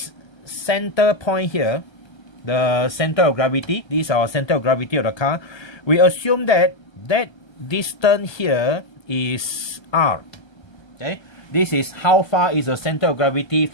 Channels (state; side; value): late; right; 1.3 ms